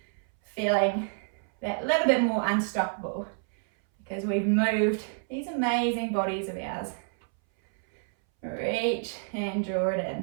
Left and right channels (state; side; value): silent; left; 59 dB below the other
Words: Feeling that little bit more unstoppable because we've moved these amazing bodies of ours. Reach and draw it